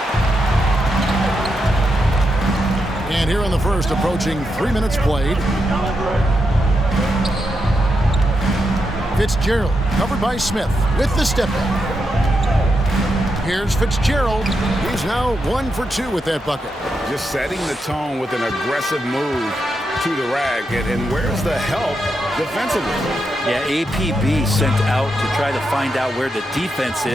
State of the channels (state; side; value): normal; both; correlation 0.84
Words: And here in the first, approaching 3 minutes played. Fitzgerald, covered by Smith, with the step back. Here's Fitzgerald. He's now 1 for 2 with that bucket. Just setting the tone with an aggressive move to the rag. And where's the help defensively? Yeah, APB sent out to try to find out where the defense